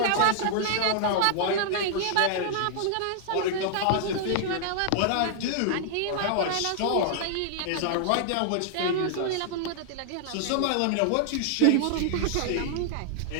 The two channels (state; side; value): different; both; correlation -0.01